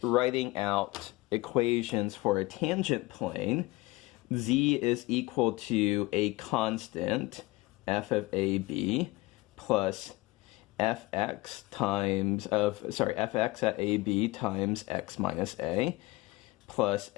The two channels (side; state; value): right; quieter; 21.3 dB